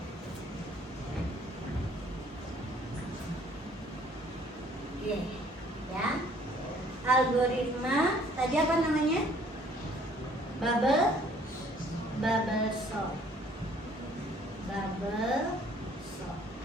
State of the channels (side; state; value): both; normal; correlation 0.59